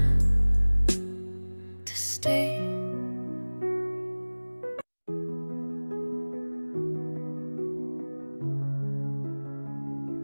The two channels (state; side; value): inverted; both; correlation -1.00